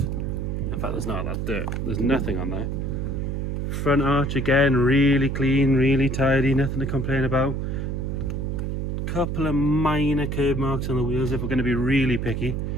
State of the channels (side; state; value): right; noise; hum, 2 dB below the sound